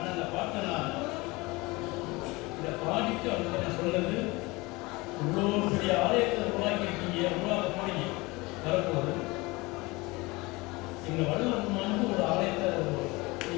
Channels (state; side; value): quieter; right; 23.4 dB